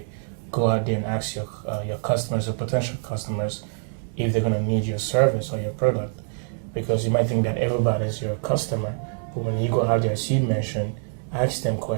go out there and ask your customers or potential customers if they're going to need your service or your product. Because you might think that everybody's your customer, but when you go out there, as you mentioned, ask them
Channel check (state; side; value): silent; left; 60 dB below the other